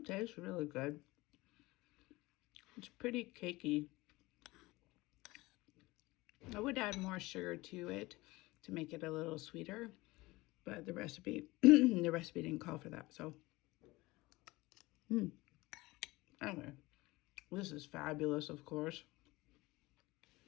tastes really good. It's pretty cakey. I would add more sugar to it to make it a little sweeter, but the recipe didn't call for that. So anyway, this is fabulous, of course.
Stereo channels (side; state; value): right; quieter; 20.8 dB